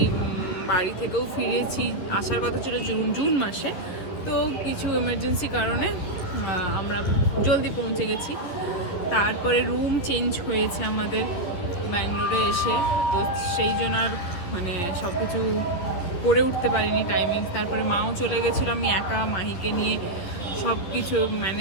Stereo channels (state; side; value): late; right; 11 ms